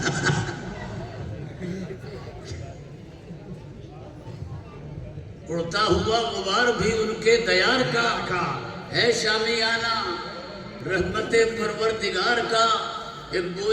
اڑتا ہوا غبار بھی ان کے دیار کا ہے شامیانہ, رحمت پروردگار کا ایک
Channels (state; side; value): identical; both; correlation 1.00